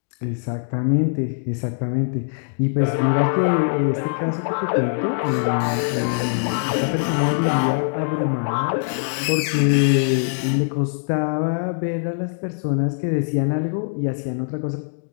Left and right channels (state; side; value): silent; right; digital silence